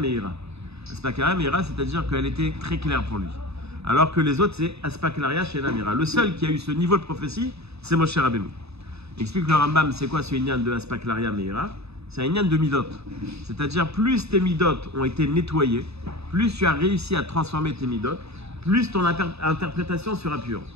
Aspaklaria Meira, c'est-à-dire qu'elle était très claire pour lui. Alors que les autres, c'est Aspaklaria Shena Meira. Le seul qui a eu ce niveau de prophétie, c'est Moshe Rabbeinu. Il explique le Rambam, c'est quoi ce inyan de Aspaklaria Meira? C'est un inyan de midot. C'est-à-dire, plus tes midot ont été nettoyés, plus tu as réussi à transformer tes midot, plus ton interprétation sera pure.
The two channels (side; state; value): left; late; 0.79 ms